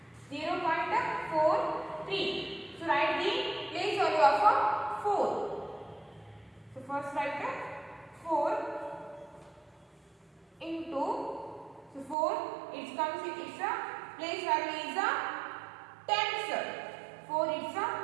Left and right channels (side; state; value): left; drops out; at 12.2 s